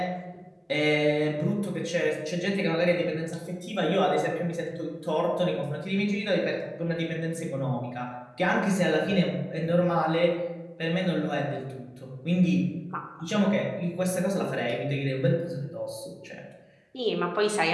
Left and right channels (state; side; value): identical; both; correlation 1.00